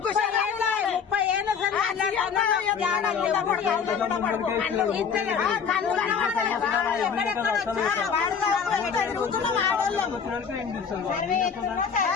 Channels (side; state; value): right; quieter; 6.5 dB